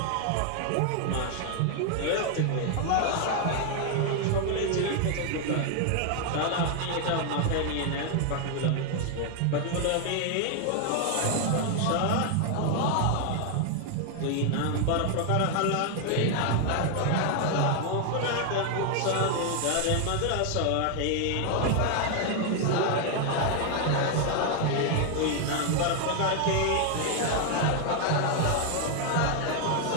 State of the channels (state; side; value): different; both; correlation 0.00